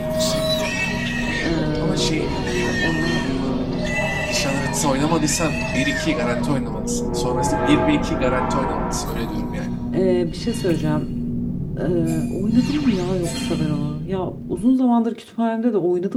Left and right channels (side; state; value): both; identical; correlation 1.00